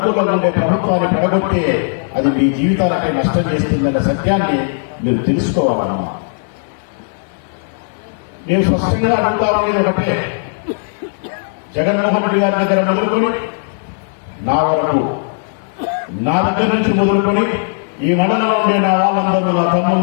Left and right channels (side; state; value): right; silent; digital silence